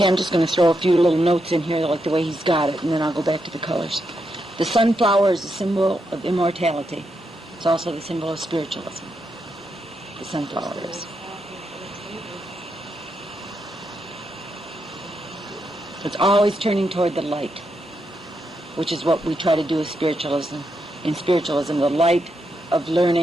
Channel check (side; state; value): both; normal; correlation 0.83